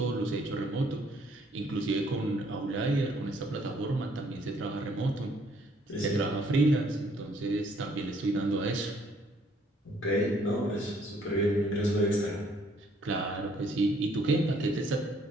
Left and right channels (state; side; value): normal; both; correlation 0.64